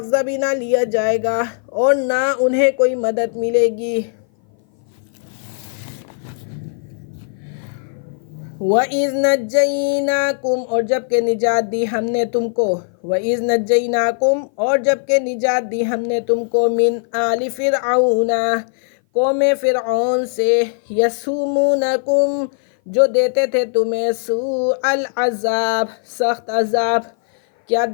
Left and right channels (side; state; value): right; silent; 58 dB below the other